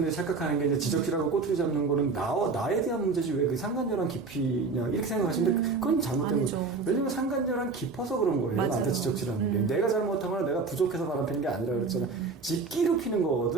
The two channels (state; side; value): quieter; left; 4.3 dB